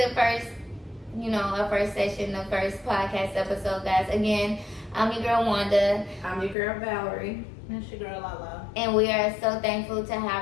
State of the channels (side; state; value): right; drops out; at 6.6 s